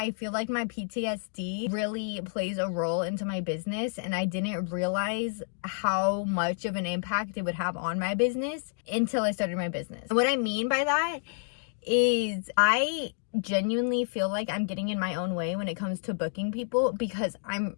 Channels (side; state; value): right; silent; digital silence